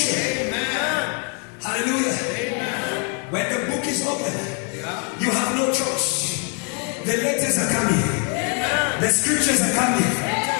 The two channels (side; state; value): right; quieter; 38.9 dB